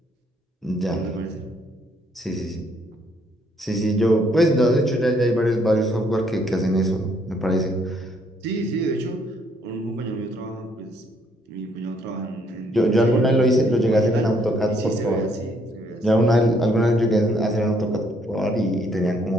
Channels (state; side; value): normal; both; correlation 0.68